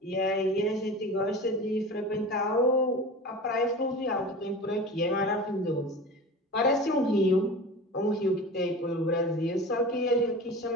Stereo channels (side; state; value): both; normal; correlation 0.33